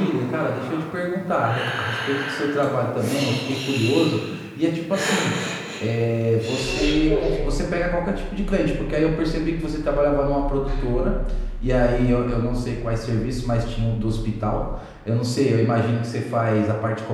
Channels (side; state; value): both; identical; correlation 1.00